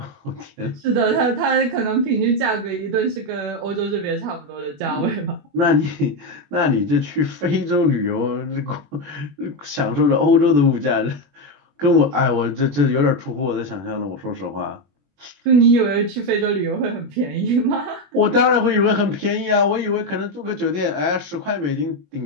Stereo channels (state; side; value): late; left; 21 ms